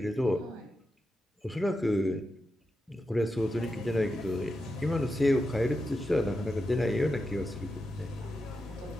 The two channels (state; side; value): normal; both; correlation 0.88